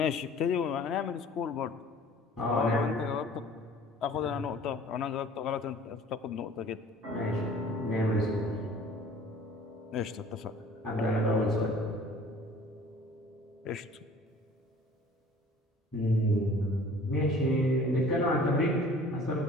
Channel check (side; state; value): both; normal; correlation 0.49